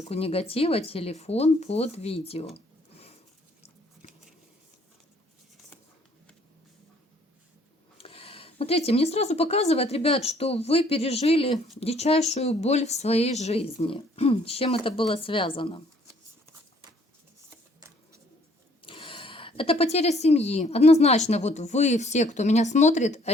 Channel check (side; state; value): both; normal; correlation 0.61